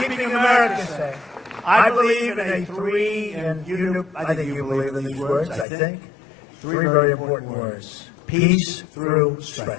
America safe, I believe in a three, and I think you believe in these words, I think, three very important words. Peace through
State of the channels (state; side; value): drops out; right; at 5.7 s